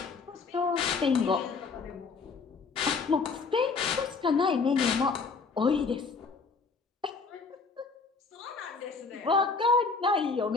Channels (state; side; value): quieter; right; 4.6 dB